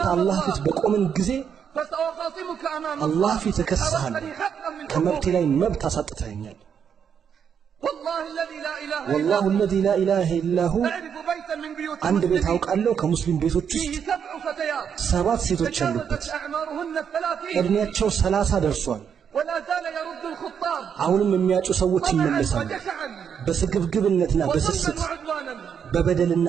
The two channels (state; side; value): quieter; left; 7.6 dB